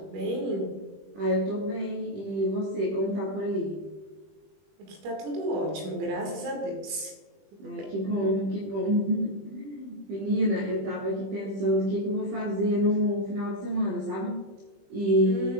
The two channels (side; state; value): left; late; 20 ms